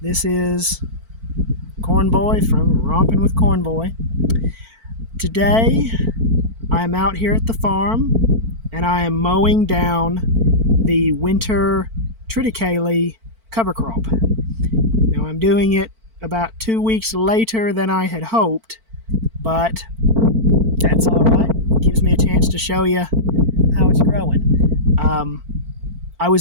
This is Corn Boy from Romping with Corn Boy. Today, I'm out here at the farm, and I am mowing down the winter triticale cover crop. Now, I'm doing it about 2 weeks later than I had hoped, but that's all right. It gives me a chance to show you how it's growing. I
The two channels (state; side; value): late; left; 4.5 ms